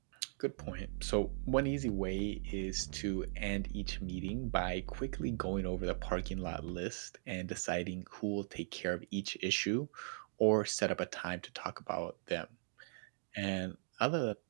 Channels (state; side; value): silent; left; digital silence